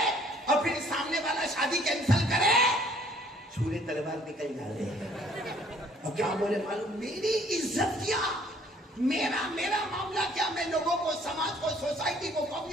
اور پھر سامنے والا شادی کینسل کرے, چھوڑے تلوار نکل جاوے. اور کیا بولے معلوم, میری عزت کیا, میرا معاملہ کیا, میں لوگوں کو, سماج کو, سوسائٹی کو,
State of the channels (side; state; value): both; normal; correlation 0.59